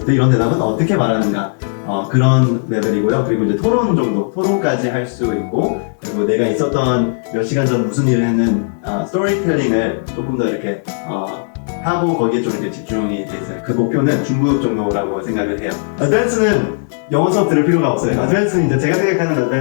때 이런 대답은 어떻게 말하는가 그런 레벨이고요. 그리고 이제 토론까지 할 수 있고 그리고 내가 있었던 몇 시간 전 무슨 일을 했는 스토리텔링을 조금 더 이렇게 하고 거기에 좀 이렇게 집중이 돼 있어요. 그 목표는 중급 정도라고 생각을 해요. 어드밴스는 영어 수업 들을 필요가 없어요. 어드밴스는 이제 제가 생각하는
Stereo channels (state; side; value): silent; right; digital silence